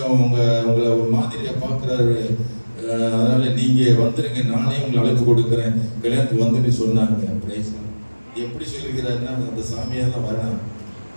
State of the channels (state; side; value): inverted; both; correlation -1.00